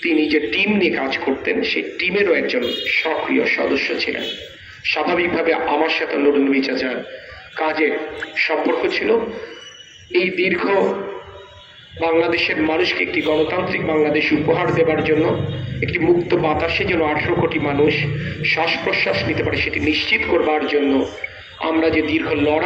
তিনি যে টিম নিয়ে কাজ করতেন সেই টিমেরও একজন সক্রিয় সদস্য ছিলেন। স্বাভাবিকভাবে আমার সাথে নুরুন নবী চাচার কাজে সম্পর্ক ছিল। এই দীর্ঘ বাংলাদেশের মানুষকে একটি গণতান্ত্রিক বাংলাদেশ উপহার দেবার জন্য, একটি মুক্ত বাতাসে যেন 18 কোটি মানুষ শ্বাস প্রশ্বাস নিতে পারে সেটি নিশ্চিত করবার জন্য আমরা যে দীর্ঘ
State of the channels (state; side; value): identical; both; correlation 1.00